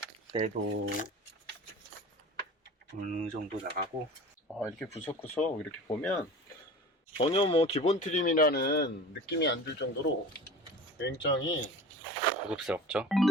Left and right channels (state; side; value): normal; both; correlation 0.37